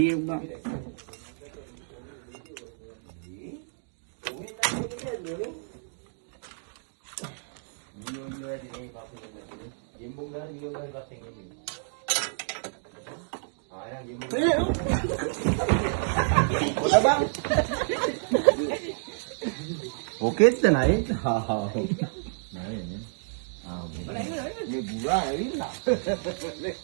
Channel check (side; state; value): left; silent; digital silence